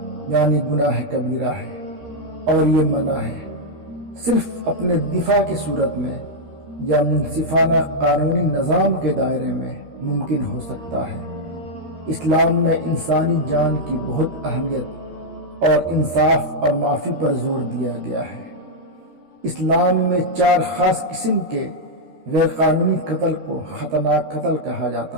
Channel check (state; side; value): late; left; 13 ms